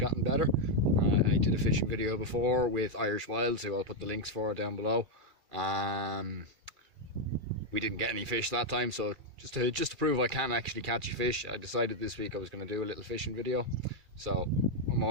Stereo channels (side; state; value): left; late; 2.4 ms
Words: better. I did a fishing video before with Irish Wilds, who I'll put the links for down below. We didn't get any fish that time, so just to prove I can actually catch a fish, I decided this week I was going to do a little fishing video. So I'm